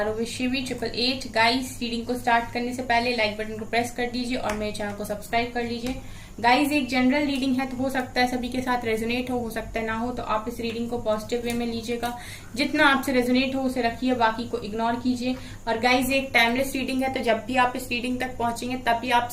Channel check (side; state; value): both; identical; correlation 1.00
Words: with Shivi 888। Guys, reading को start करने से पहले like button को press कर दीजिए और मेरे चैनल को सब्सक्राइब कर लीजिए। गाइस, एक जनरल रीडिंग है तो हो सकता है सभी के साथ रेजोनेट हो सकता है ना हो, तो आप इस रीडिंग को पॉजिटिव वे में लीजिएगा। जितना आपसे रेजोनेट हो उसे रखिए, बाकी को इग्नोर कीजिए। और गाइस, एक टाइमलेस रीडिंग है तो जब भी आप इस रीडिंग तक पहुंचेंगे तभी